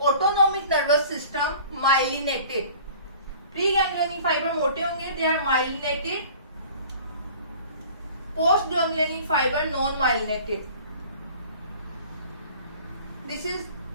nervous system myelinated. Preganglionic fibre मोटे होंगे, they are myelinated. Post ganglionic fibre non myelinated. This is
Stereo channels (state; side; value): inverted; both; correlation -0.46